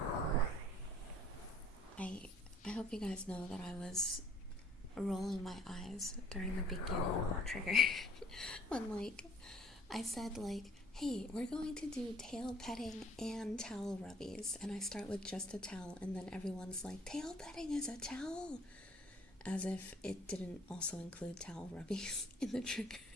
I hope you guys know that I was rolling my eyes during the beginning of that trigger. When, like, I said, like, hey, we're going to do tail petting and towel rubbies. And I start with just a towel, and then everyone's like, tail petting is a towel. As if it didn't also include towel rubbies in the trigger.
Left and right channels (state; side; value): normal; both; correlation 0.56